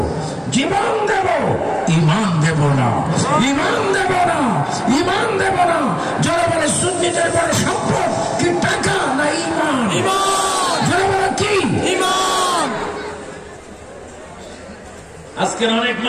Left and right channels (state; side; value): identical; both; correlation 1.00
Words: জীবন দেব, ইমান দেব না, ইমান দেব না, ইমান দেব না। যারা বলে সুন্নিদের বড় সম্পদ কি টাকা না ইমান? যারা বলে কি ইমান? আজকের অনেক